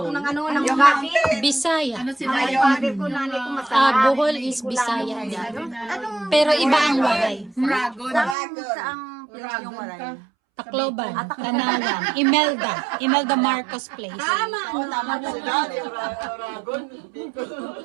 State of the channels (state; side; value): drops out; left; at 8.3 s